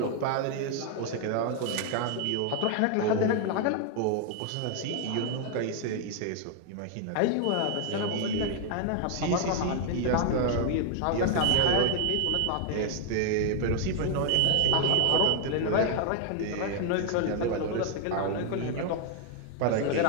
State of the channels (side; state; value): both; different; correlation 0.00